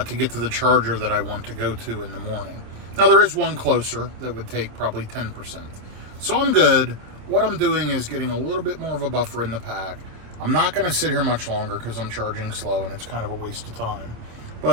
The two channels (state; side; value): late; left; 27 ms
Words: to get to the charger that I want to go to in the morning. Now, there is one closer that would take probably 10%. So I'm good. What I'm doing is getting a little bit more of a buffer in the pack. I'm not going to sit here much longer because I'm charging slow and it's kind of a waste of time.